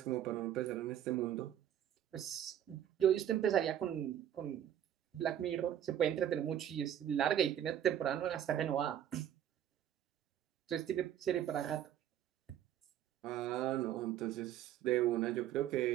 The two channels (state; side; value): quieter; left; 10.8 dB